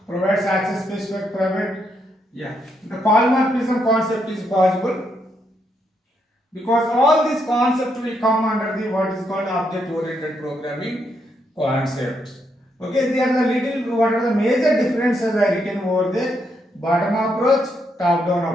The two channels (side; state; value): both; normal; correlation 0.78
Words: provides access specific private. Yeah. The polymorphism concept is possible, because all these concepts will come under the what is called object oriented programming concepts. Okay, they are the little, what are the major differences I written over there. Bottom approach, top down